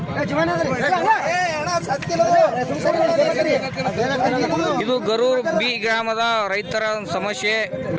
ಇದು ಗರೂರ್ ಬಿ ಗ್ರಾಮದ ರೈತರ ಸಮಸ್ಯೆ.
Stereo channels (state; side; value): identical; both; correlation 1.00